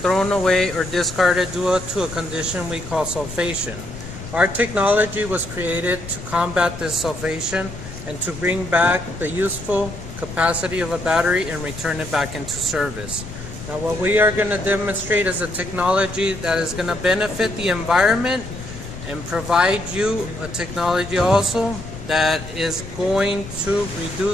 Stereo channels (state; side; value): noise; left; rumble, 12 dB below the sound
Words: away or discarded due to a condition we call sulfation. Our technology was created to combat this sulfation and to bring back the useful capacity of a battery and return it back into service. Now what we are going to demonstrate is a technology that is going to benefit the environment and provide you a technology also that is going to